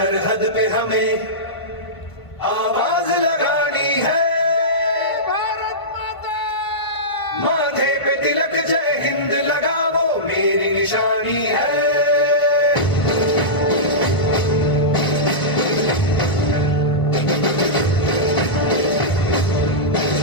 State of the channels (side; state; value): right; late; 1.5 ms